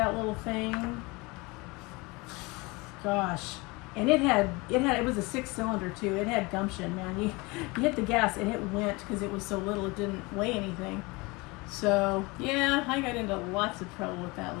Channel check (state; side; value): quieter; right; 25.2 dB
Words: little thing. Gosh, and it was a 6-cylinder too. It had gumption, man. You hit the gas and it went because it was so little. It didn't weigh anything. So yeah, I got into lots of trouble with that